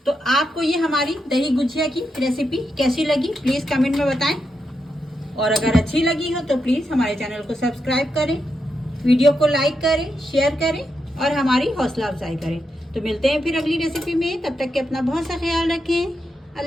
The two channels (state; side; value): normal; both; correlation 0.85